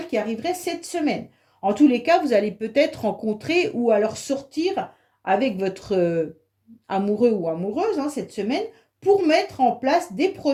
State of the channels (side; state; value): both; identical; correlation 1.00